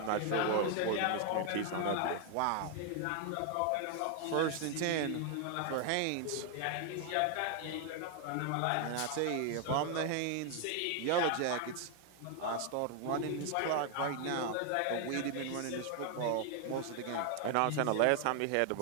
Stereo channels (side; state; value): both; different; correlation 0.00